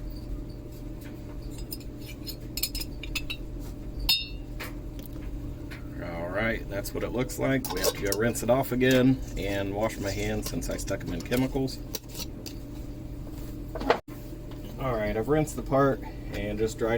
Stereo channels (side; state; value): both; identical; correlation 1.00